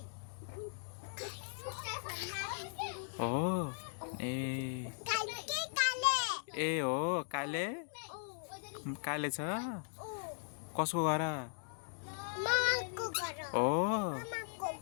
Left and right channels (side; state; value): right; silent; digital silence